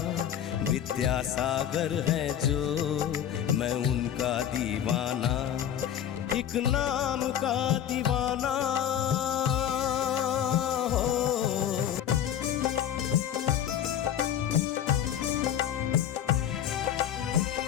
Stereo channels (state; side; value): quieter; right; 9.9 dB